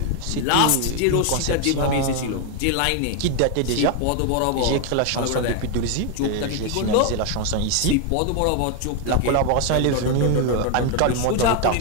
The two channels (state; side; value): different; both; correlation 0.01